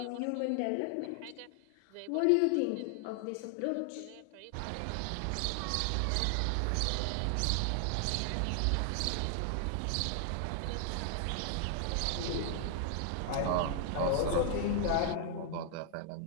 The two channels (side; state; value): both; different; correlation 0.00